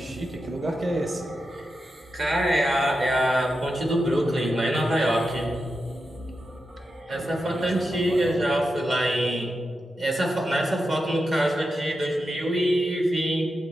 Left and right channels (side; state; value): both; normal; correlation 0.89